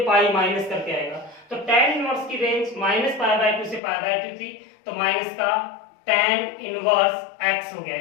पाई माइनस करके आएगा। तो tan इनवर्स की रेंज माइनस पाई बाय 2 से पाई बाय 2 थी, तो माइनस का tan इनवर्स x हो गया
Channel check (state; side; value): drops out; right; at 3.8 s